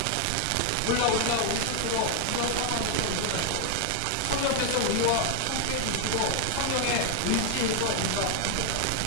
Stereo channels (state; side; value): different; both; correlation 0.00